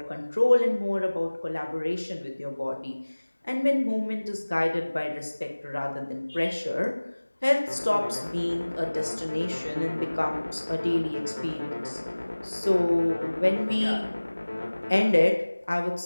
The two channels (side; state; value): both; inverted; correlation -1.00